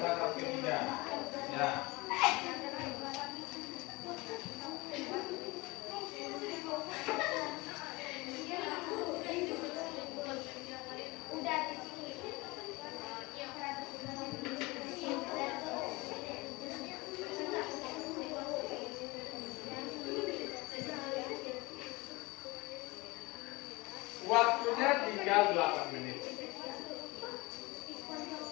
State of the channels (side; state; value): right; quieter; 23.6 dB